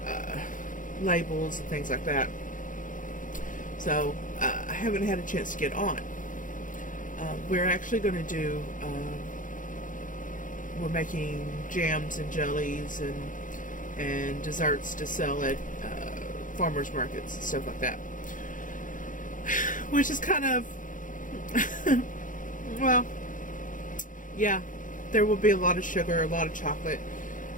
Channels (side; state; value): right; late; 0.38 ms